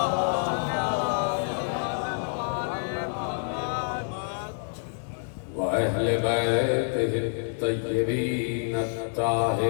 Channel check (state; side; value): silent; right; digital silence